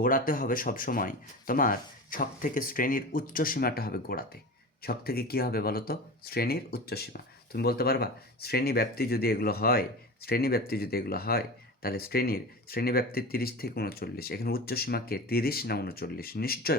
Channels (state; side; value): normal; both; correlation 0.30